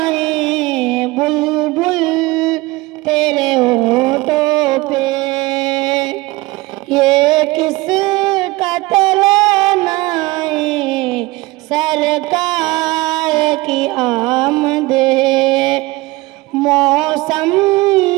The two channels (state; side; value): quieter; left; 21.4 dB